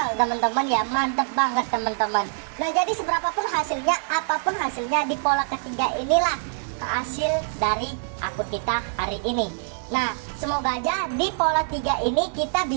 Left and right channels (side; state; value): left; silent; digital silence